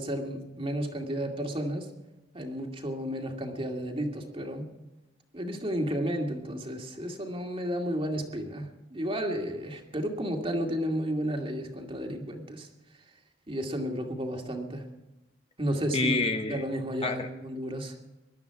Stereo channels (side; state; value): both; normal; correlation 0.62